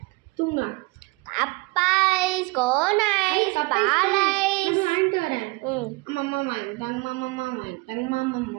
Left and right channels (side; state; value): left; quieter; 25.8 dB